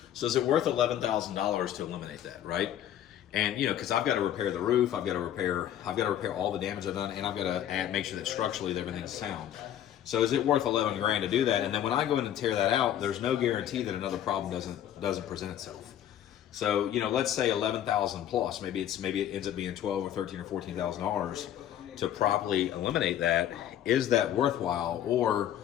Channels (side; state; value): right; quieter; 11.1 dB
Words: So is it worth $11,000 to eliminate that, right? And you know, because I've got to repair the roof, I've got to repair all the damage I've done, and I've got to make sure that structurally everything's sound. So is it worth 11 grand to do that? And then when I go in and tear that out, there's no guarantee that another problem doesn't present itself. So, you know, let's say 11,000 plus, maybe it ends up being 12 or 13 or $14,000 to properly eliminate that. Is that worthwhile, or